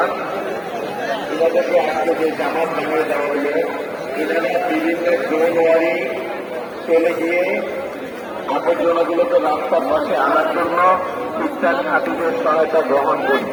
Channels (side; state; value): both; identical; correlation 1.00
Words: এনাদেরকে আজকে যে জামাত বানিয়ে দেওয়া হলো, এনারা বিভিন্ন জোনওয়ারি চলে গিয়ে আবর্জনাগুলোকে রাস্তার পাশে আনার জন্য খ্রিস্টান খাতিদের সহায়তা গ্রহণ করি